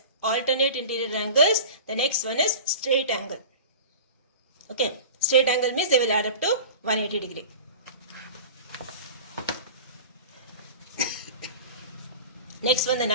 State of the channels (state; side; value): inverted; both; correlation -0.35